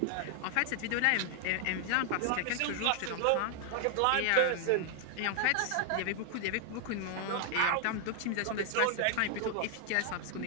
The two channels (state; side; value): different; both; correlation 0.00